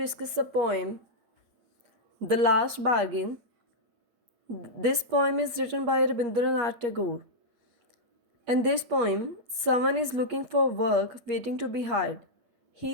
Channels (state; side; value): late; left; 8.4 ms